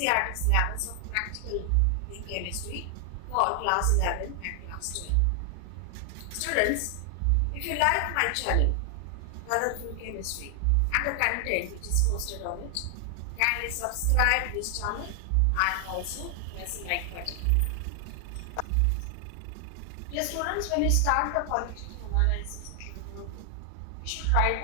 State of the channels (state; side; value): different; both; correlation 0.00